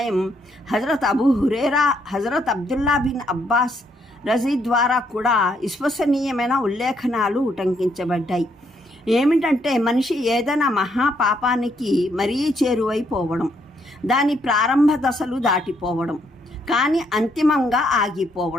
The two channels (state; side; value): normal; both; correlation 0.73